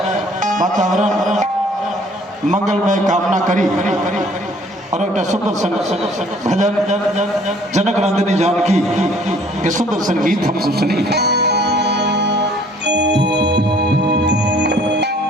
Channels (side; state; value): both; normal; correlation 0.57